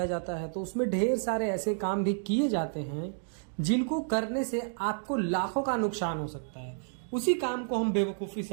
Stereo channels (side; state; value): left; silent; digital silence